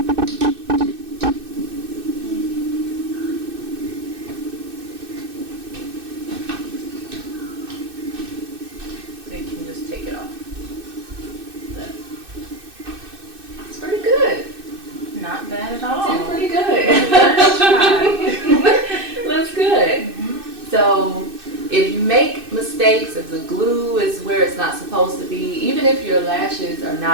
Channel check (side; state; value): left; late; 2.6 ms